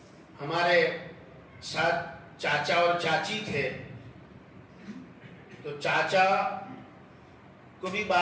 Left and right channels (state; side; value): identical; both; correlation 1.00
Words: ہمارے ساتھ چاچا اور چاچی تھے، تو چاچا کو بھی